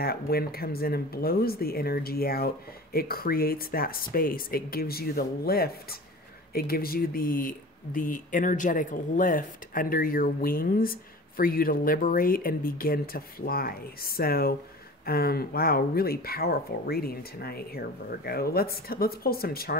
wind comes in and blows the energy out, it creates that space. It gives you the lift. It gives you the energetic lift under your wings for you to liberate and begin to fly. So, wow, really powerful reading tonight here, Virgo. Let's pull some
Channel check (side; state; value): both; normal; correlation 0.38